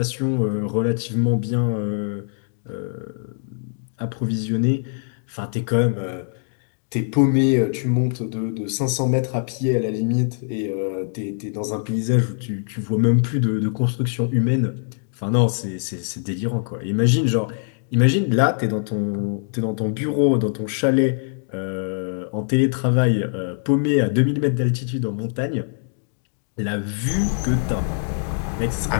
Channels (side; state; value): right; silent; digital silence